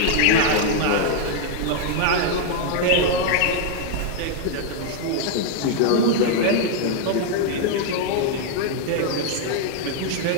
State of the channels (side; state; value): both; different; correlation 0.00